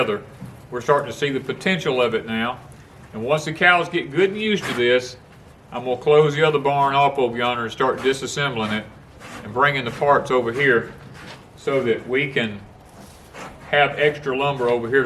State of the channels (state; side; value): identical; both; correlation 1.00